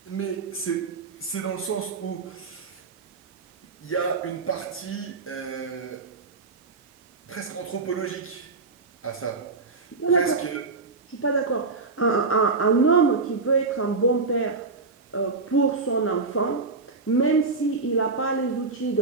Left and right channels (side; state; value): left; quieter; 4.1 dB